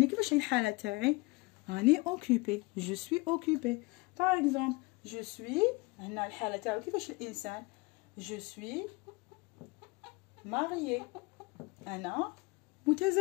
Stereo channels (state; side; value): quieter; right; 24.4 dB